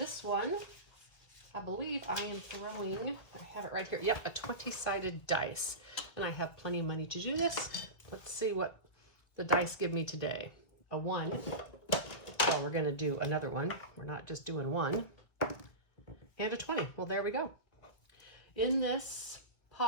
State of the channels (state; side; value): late; right; 1.7 ms